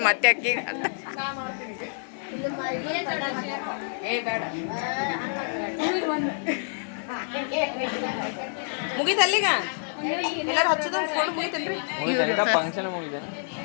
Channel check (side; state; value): right; silent; digital silence